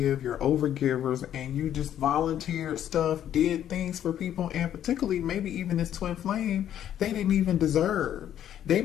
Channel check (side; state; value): right; quieter; 10.6 dB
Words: over givers, and you just volunteered stuff, did things for people, and particularly maybe even this twin flame, they didn't even deserve. They